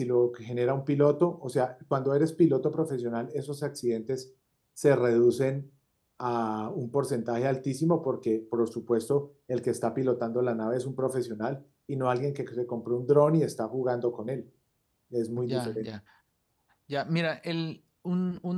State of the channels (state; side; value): identical; both; correlation 1.00